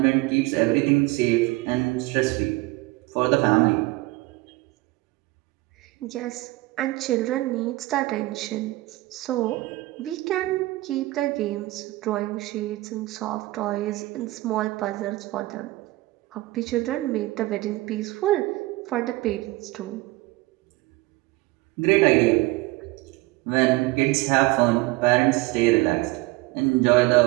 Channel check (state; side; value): quieter; left; 20.5 dB